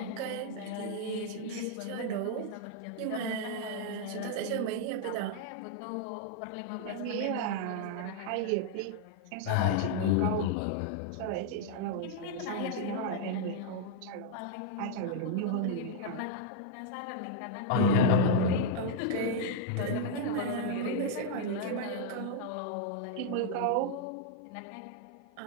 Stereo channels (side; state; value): both; different; correlation -0.01